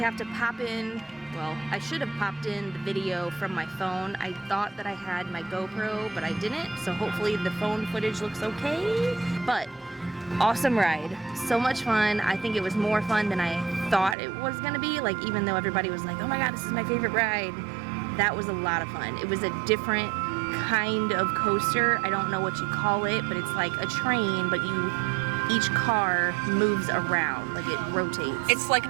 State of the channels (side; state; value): left; drops out; at 14.2 s